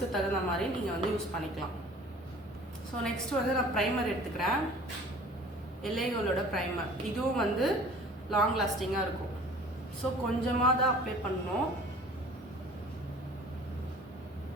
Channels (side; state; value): both; normal; correlation 0.48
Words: தகுந்த மாதிரி நீங்கள் வந்து யூஸ் பண்ணிக்கலாம். ஸோ நெக்ஸ்ட் வந்து நான் ப்ரைமர் எடுத்துக்கிறேன். எல்ஏகோலோட ப்ரைமர். இதுவும் வந்து லாங் லாஸ்டிங்காக இருக்கும். ஸோ கொஞ்சமாக தான் அப்ளை பண்ணணும்.